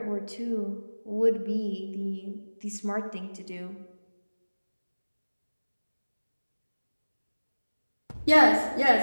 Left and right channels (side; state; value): both; inverted; correlation -1.00